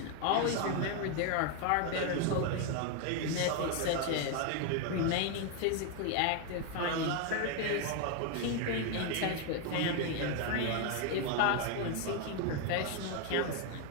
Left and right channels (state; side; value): different; both; correlation 0.01